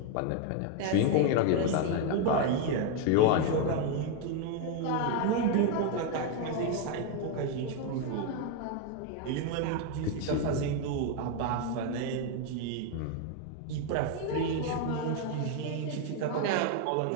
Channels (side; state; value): both; different; correlation 0.01